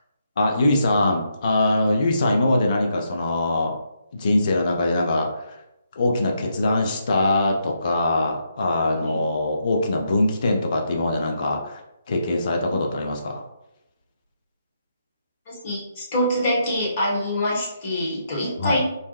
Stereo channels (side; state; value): both; inverted; correlation -0.78